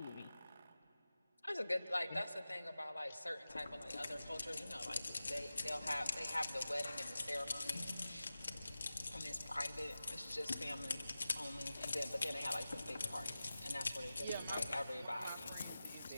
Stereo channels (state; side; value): inverted; both; correlation -0.95